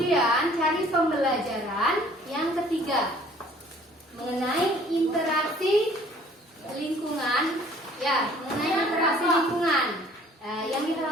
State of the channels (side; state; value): both; normal; correlation 0.55